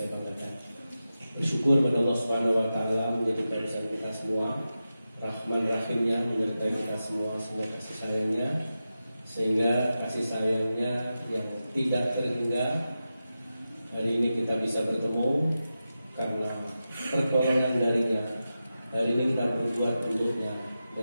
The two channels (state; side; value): inverted; both; correlation -0.92